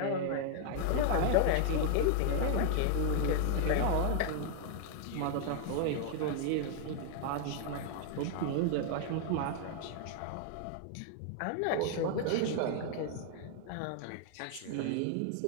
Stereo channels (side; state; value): both; different; correlation 0.00